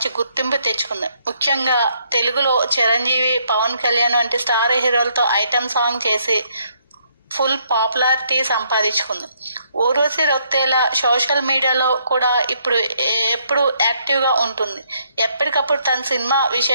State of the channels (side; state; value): both; inverted; correlation -0.71